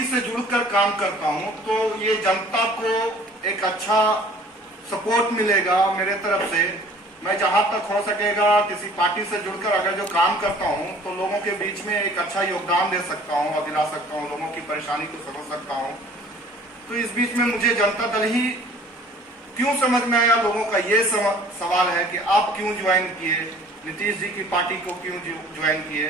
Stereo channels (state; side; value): normal; both; correlation 0.51